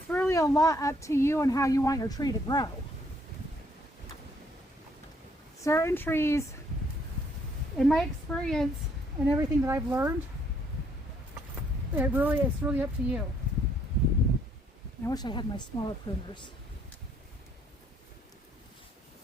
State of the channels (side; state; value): both; normal; correlation 0.67